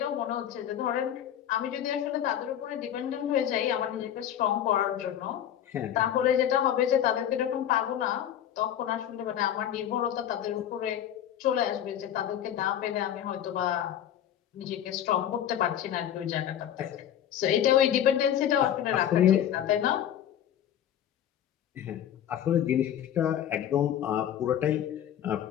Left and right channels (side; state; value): right; quieter; 10.4 dB